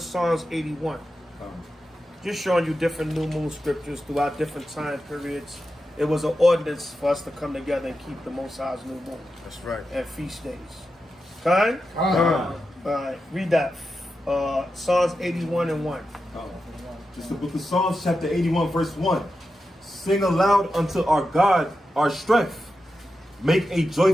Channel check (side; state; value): both; normal; correlation 0.90